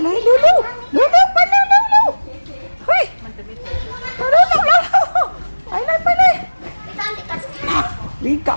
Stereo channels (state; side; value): inverted; both; correlation -1.00